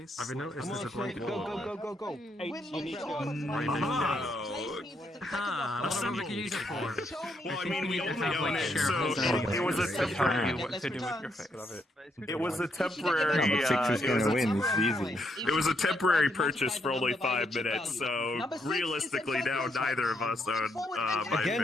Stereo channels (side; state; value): both; normal; correlation 0.76